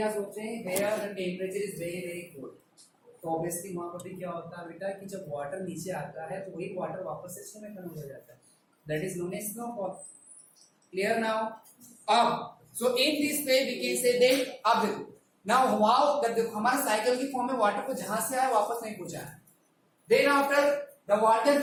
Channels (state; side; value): identical; both; correlation 1.00